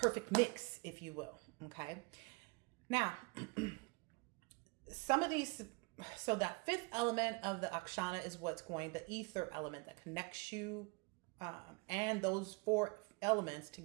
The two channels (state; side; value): quieter; left; 30.1 dB